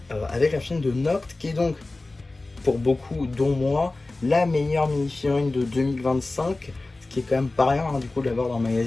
avec la chaîne de Noct, qui est donc, pour beaucoup, dont moi, la meilleure mini-figurine de 2025. Qui est quand même pas rien du coup de l'avoir dans le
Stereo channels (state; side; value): quieter; right; 3.1 dB